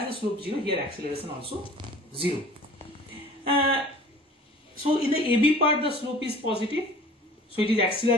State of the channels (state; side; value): normal; both; correlation 0.46